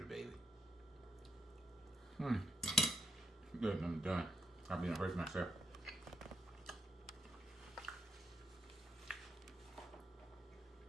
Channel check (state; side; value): normal; both; correlation 0.79